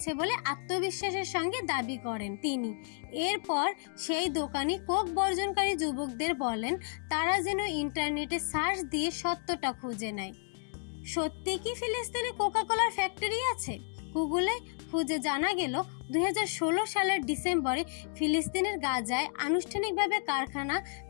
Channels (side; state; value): right; silent; 57 dB below the other